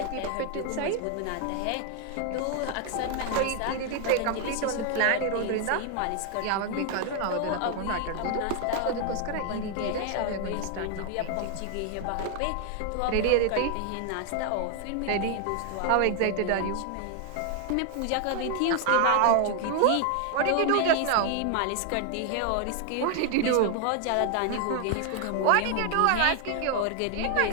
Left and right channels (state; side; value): different; both; correlation 0.00